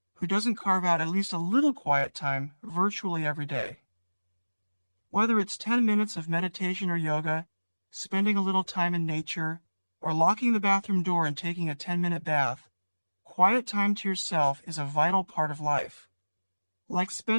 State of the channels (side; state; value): both; inverted; correlation -1.00